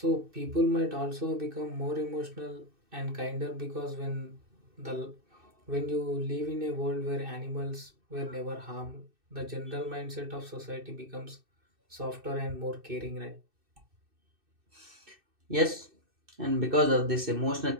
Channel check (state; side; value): late; left; 2.6 ms